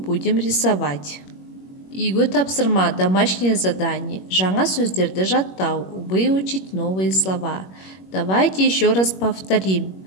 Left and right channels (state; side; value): late; right; 21 ms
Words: рисовать. Үйге тапсырма, домашнее задание. Жаңа сөздерді жаттау. Выучить новые слова. Давайте еще раз повторим.